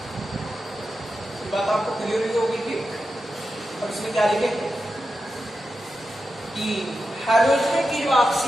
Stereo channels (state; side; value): normal; both; correlation 0.90